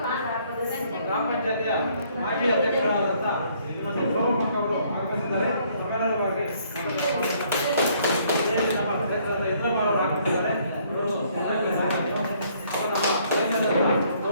ಗ್ರಾಮ ಪಂಚಾಯತಿಯ ಮಾಜಿ ಅಧ್ಯಕ್ಷರಾದಂಥ ಶ್ರೀಮತಿ ಸೋಮಕ್ಕ ಅವರು ಆಗಮಿಸಿದ್ದಾರೆ. ನಮ್ಮೆಲ್ಲರ ಪರವಾಗಿ ನಮ್ಮ ಕ್ಷೇತ್ರದ ಯಜ್ಞಮಾಳವರು ಆಗಮಿಸಿದ್ದಾರೆ.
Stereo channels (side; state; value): both; inverted; correlation -0.65